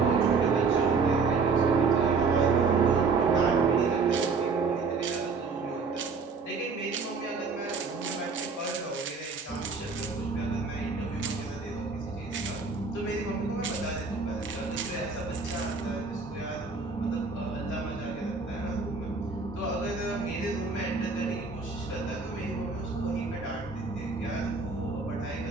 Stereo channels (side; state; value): left; quieter; 4.6 dB